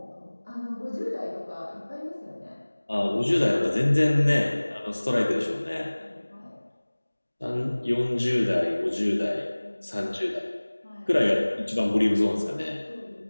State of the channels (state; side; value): inverted; both; correlation -1.00